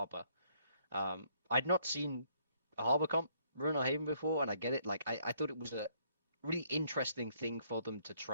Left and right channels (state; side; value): inverted; both; correlation -0.67